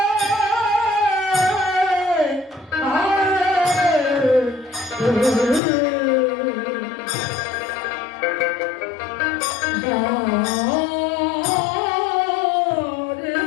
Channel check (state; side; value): drops out; right; at 5.6 s